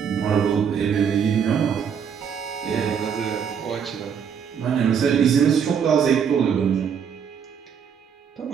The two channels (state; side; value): quieter; left; 7.4 dB